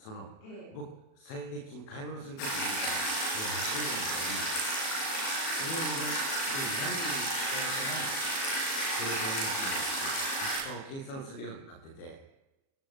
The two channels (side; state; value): right; late; 36 ms